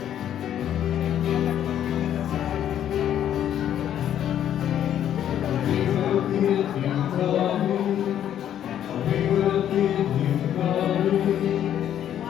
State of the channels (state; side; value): quieter; right; 10.5 dB